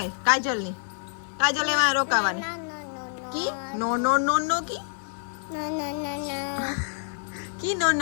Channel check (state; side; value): silent; right; 60 dB below the other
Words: કાજલ ની કાજલ એમાં રોકાવાની કી નો નો નો નો કી કી નો